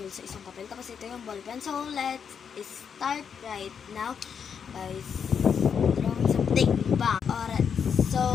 hole sa isang papel. Tapos ito yung ballpen. So, let's start right now by drawing something. Bang!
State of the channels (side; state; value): right; quieter; 7.0 dB